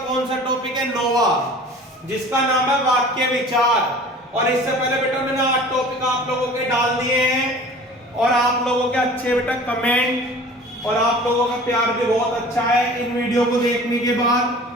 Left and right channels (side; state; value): both; normal; correlation 0.44